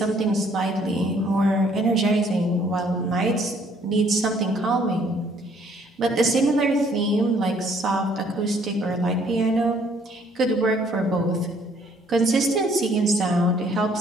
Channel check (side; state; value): both; normal; correlation 0.62